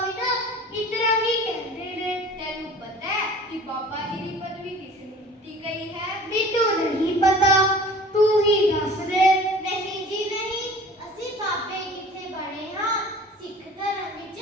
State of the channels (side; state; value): both; normal; correlation 0.44